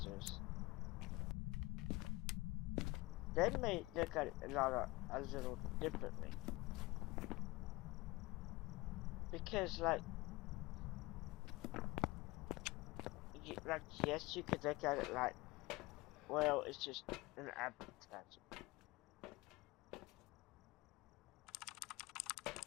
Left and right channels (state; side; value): quieter; right; 21.7 dB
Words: they may look at it a little differently. Because like yes, you could look at it like, well, it's just an advertisement.